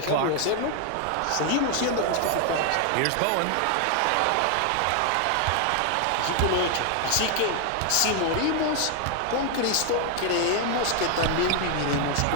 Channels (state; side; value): different; both; correlation 0.00